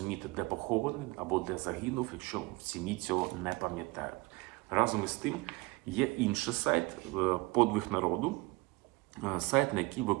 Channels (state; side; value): quieter; left; 24.1 dB